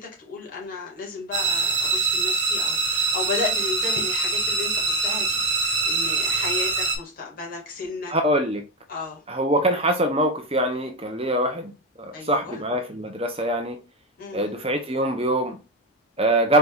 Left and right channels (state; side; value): normal; both; correlation 0.11